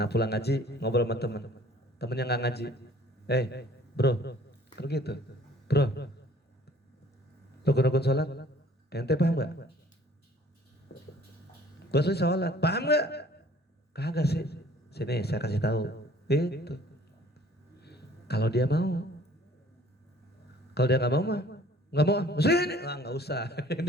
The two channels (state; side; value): normal; both; correlation 0.55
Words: pulang ngaji ngobrol sama temennya nggak ngaji, bro, begitu, bro, rukun-rukun salat ente paham gak? Gua sih sholat, paham gak? Kagak sih. Sini saya kasih tahu. Itu. Kalau dia mau, kalau dia nggak mau mah, nggak mau. Sini, nggak usah.